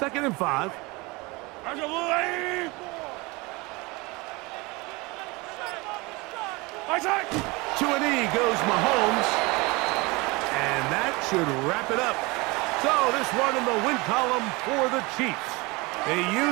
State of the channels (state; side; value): quieter; left; 24.9 dB